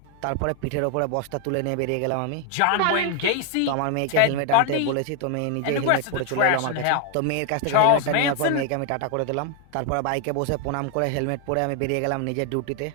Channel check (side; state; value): both; different; correlation 0.00